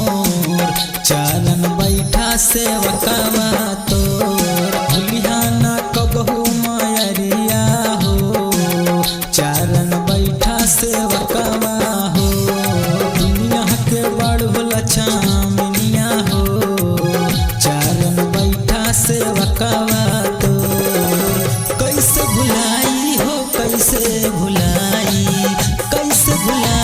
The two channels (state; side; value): identical; both; correlation 1.00